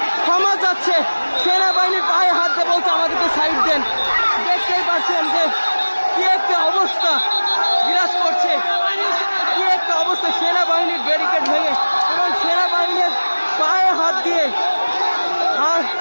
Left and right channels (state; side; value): inverted; both; correlation -1.00